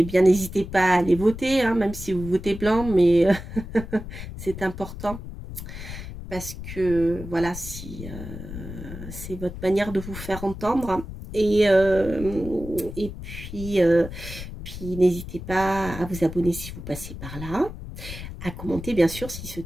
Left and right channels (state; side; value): noise; left; rumble, 10 dB below the sound